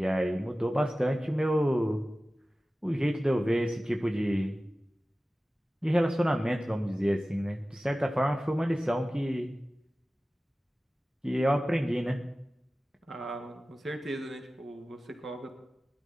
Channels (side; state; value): both; normal; correlation 0.96